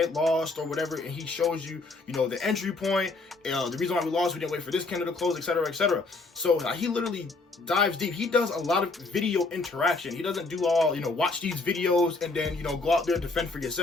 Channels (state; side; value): quieter; right; 3.5 dB